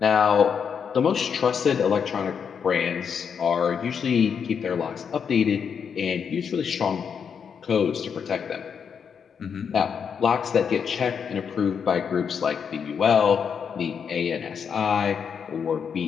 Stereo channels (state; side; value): quieter; right; 6.9 dB